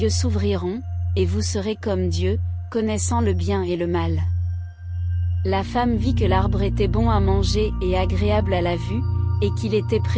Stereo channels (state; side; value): identical; both; correlation 1.00